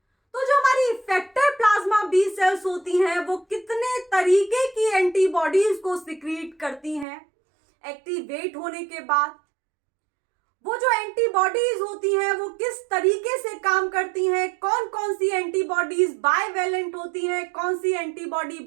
तो जो हमारी इफेक्टर प्लाज्मा बी सेल्स होती हैं वो कितने तरीके की एंटीबॉडीज को सिक्रीट करती हैं एक्टिवेट होने के बाद। वो जो एंटीबॉडीज होती हैं वो किस तरीके से काम करती हैं, कौन कौन सी एंटीबॉडीज बाइवेलेंट होती हैं, कौन सी एंटीबॉडी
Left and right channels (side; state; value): left; drops out; at 7.1 s